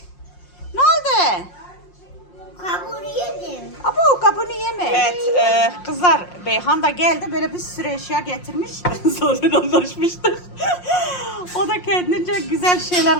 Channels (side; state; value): right; late; 5.6 ms